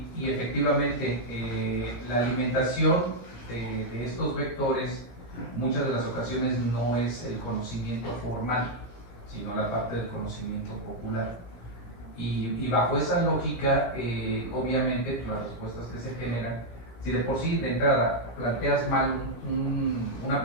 efectivamente, la alimentación de estos vectores, muchas de las ocasiones no es el conocimiento formal, sino la parte del conocimiento popular. Y bajo esa lógica, obviamente, las respuestas que se generan, si de por sí de entrada planteas mal una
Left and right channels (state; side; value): late; right; 17 ms